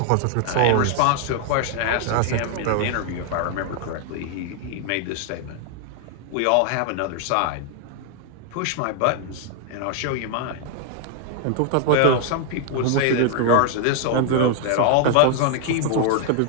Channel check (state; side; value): different; both; correlation 0.00